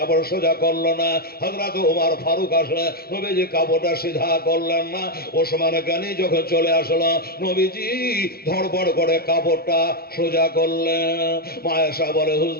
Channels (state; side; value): late; right; 0.45 ms